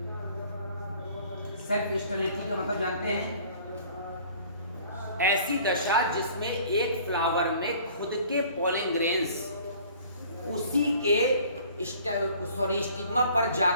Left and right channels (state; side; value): inverted; both; correlation -0.52